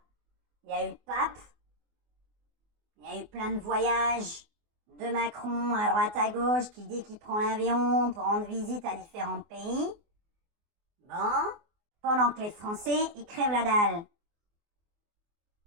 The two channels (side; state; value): left; late; 24 ms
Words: il y a eu le pape, il y a eu plein de voyages de Macron à droite à gauche qui dit qu'il prend l'avion pour rendre visite à différents pays. Bon, pendant que les Français, ils crèvent la dalle.